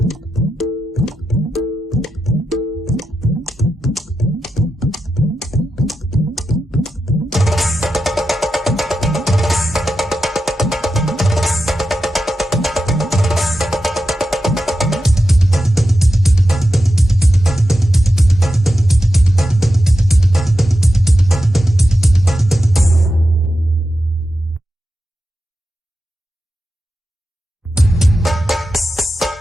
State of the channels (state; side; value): normal; both; correlation 0.90